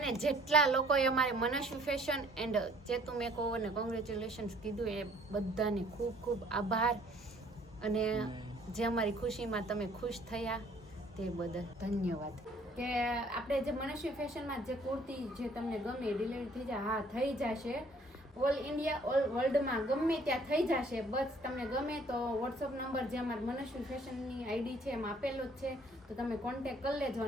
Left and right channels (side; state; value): both; normal; correlation 0.58